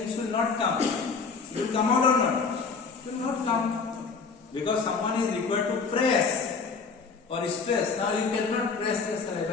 will not come. It will come out or not? It will not come. Because someone is required to press or stress. Now you cannot press the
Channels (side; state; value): right; quieter; 5.0 dB